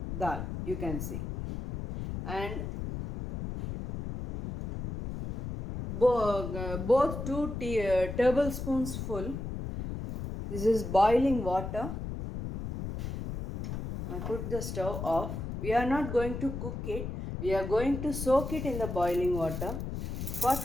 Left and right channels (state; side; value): noise; left; rumble, 6 dB below the sound